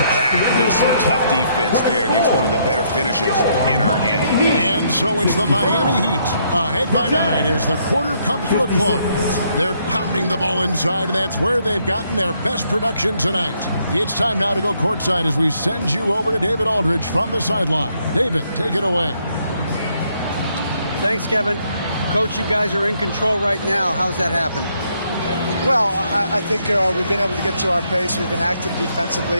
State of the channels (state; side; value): inverted; both; correlation -0.72